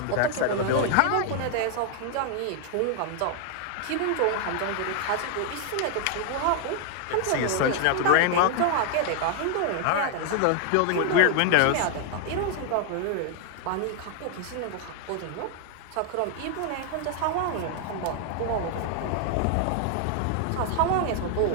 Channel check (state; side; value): different; both; correlation 0.00